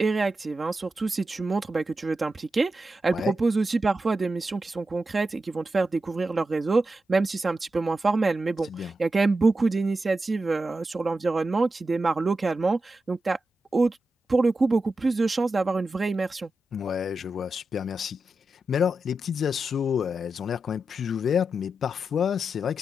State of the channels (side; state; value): both; normal; correlation 0.90